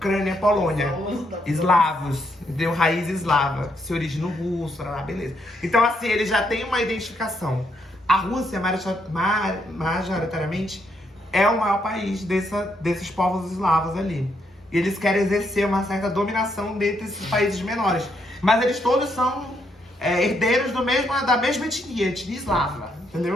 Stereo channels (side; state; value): both; normal; correlation 0.76